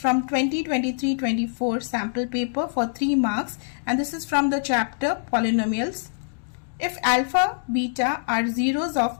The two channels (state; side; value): silent; right; digital silence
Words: 2023-24 sample paper for 3 marks and this is from the chapter Polynomials. If alpha, beta are zeros